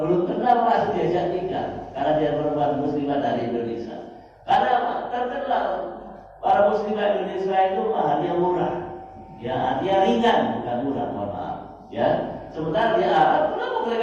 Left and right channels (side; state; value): both; identical; correlation 1.00